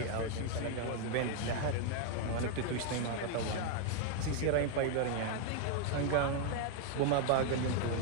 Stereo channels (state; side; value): different; both; correlation 0.00